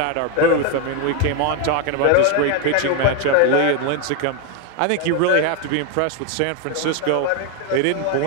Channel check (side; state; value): both; different; correlation 0.01